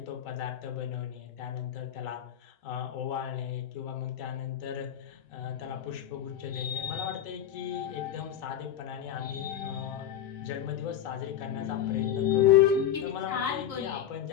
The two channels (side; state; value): right; quieter; 10.0 dB